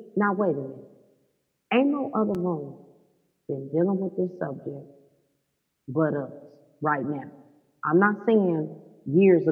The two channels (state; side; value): identical; both; correlation 1.00